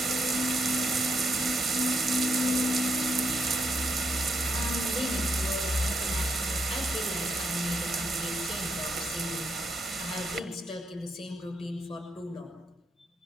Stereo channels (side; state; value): both; normal; correlation 0.78